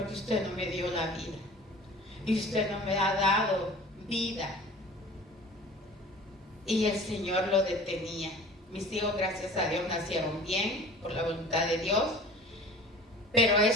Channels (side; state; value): both; normal; correlation 0.42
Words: usted no me dio la vida. Y usted no me ha dado vida. Y el Señor lo detenía. Mis hijos, gracias a Dios, nacieron bien, por la voluntad de Dios. Pero